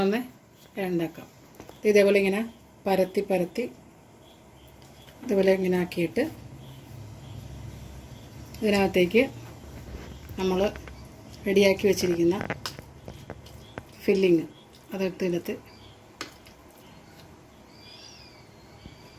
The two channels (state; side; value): identical; both; correlation 1.00